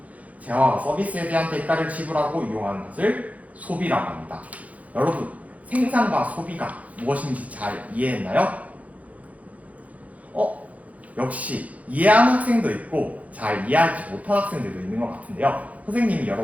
재화와 서비스에 대한 대가를 지불하고 이용하는 것을 소비라고 합니다. 여러분 생산과 소비가 무엇인지 잘 이해했나요? 역시 이해한 학생도 있고 잘 이해하지 못한 학생들도 있는 것 같은데요. 선생님이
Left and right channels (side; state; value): left; late; 0.070 ms